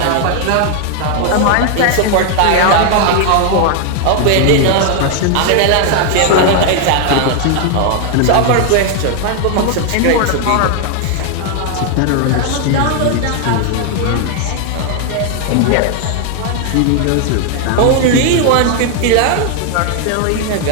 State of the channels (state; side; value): different; both; correlation 0.00